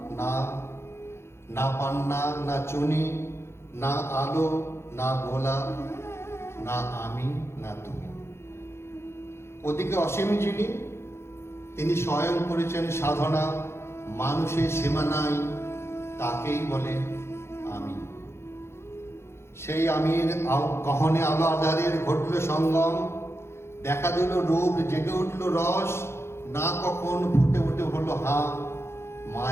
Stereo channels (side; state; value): right; late; 0.12 ms